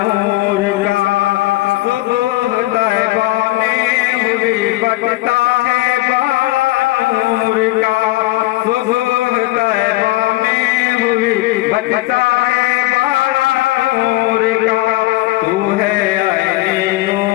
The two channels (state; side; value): quieter; right; 18.5 dB